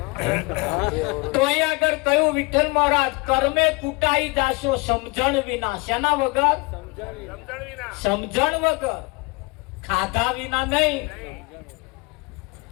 તો અહીંયા આગળ કયું વિઠ્ઠલ મહારાજ કર્મે કૂટાઈ જાશો સમજણ વિના. શેના વગર? સમજણ વગર. ખાધા વિના નહીં,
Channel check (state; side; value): quieter; right; 26.7 dB